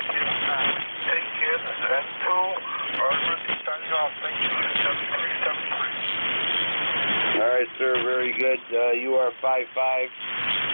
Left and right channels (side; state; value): both; inverted; correlation -1.00